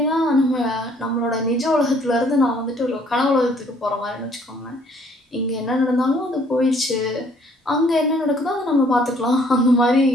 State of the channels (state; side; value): normal; both; correlation 0.61